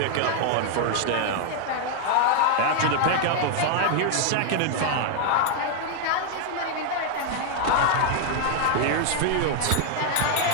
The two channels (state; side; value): different; both; correlation 0.00